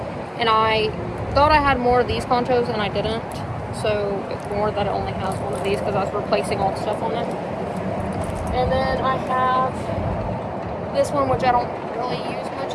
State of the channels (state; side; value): identical; both; correlation 1.00